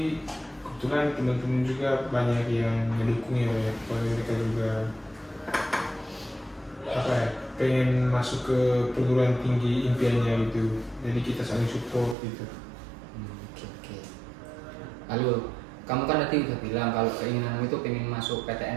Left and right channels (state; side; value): drops out; left; at 12.2 s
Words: kebetulan teman-teman juga banyak yang mendukung ya, kalau mereka juga pengen masuk ke perguruan tinggi impiannya gitu, jadi kita saling support gitu. Oke. Lalu kamu kan tadi udah bilang kalau keinginanmu itu pengen masuk